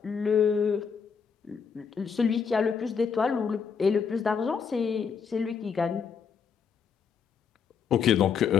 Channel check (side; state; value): right; quieter; 6.4 dB